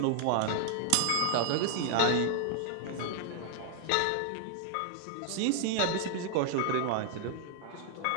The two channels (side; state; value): both; different; correlation 0.00